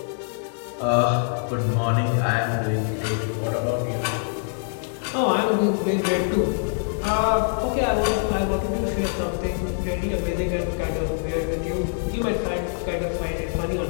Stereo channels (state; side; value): silent; right; 57 dB below the other